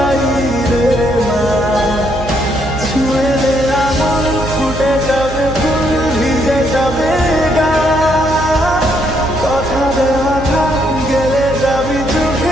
না। ছুঁয়ে দে আমার, ফুটে যাবে ফুল, ভিজে যাবে গা। কথা দেওয়া থাক, গেলে যাবি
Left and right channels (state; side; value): noise; right; hum, 10 dB below the sound